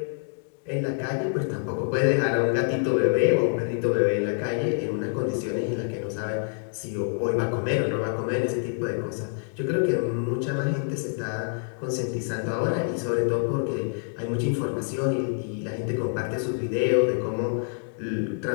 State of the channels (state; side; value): silent; right; digital silence